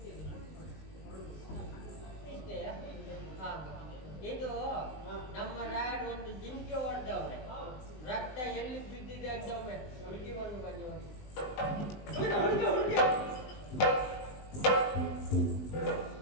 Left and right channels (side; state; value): right; late; 20 ms